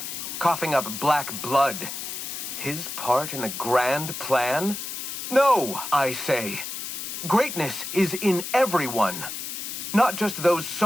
coughing up black blood, his part in the grand plan? No, I say. Greatness is in everyone. Not just those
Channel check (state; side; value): noise; left; hiss, 6 dB below the sound